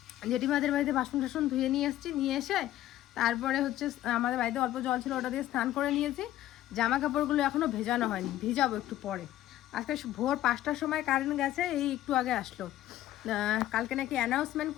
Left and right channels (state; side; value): quieter; right; 13.8 dB